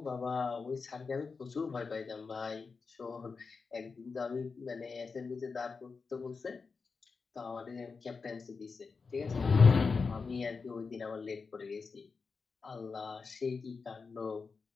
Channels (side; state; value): right; quieter; 4.8 dB